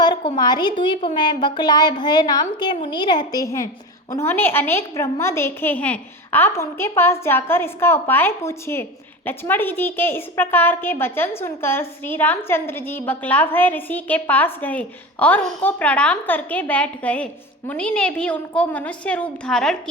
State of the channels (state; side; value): normal; both; correlation 0.28